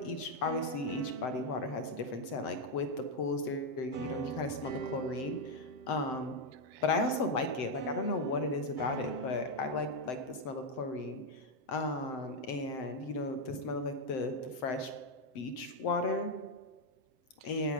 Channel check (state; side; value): late; right; 7.8 ms